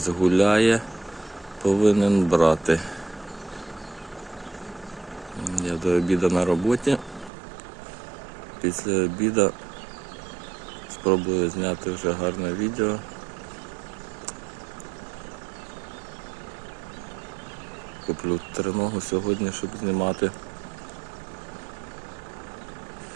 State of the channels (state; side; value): drops out; left; at 7.3 s